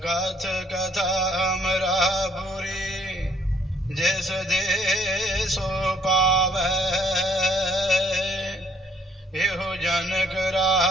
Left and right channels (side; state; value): both; normal; correlation 0.65